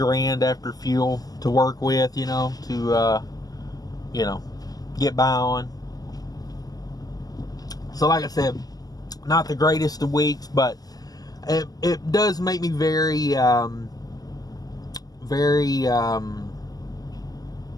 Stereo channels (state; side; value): late; right; 0.18 ms